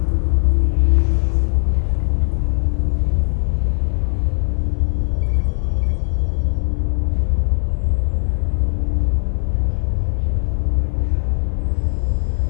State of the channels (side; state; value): right; silent; 58 dB below the other